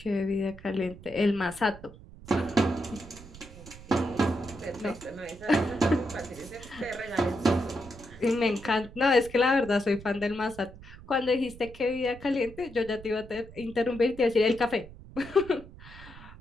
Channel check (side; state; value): right; noise; rumble, 17 dB below the sound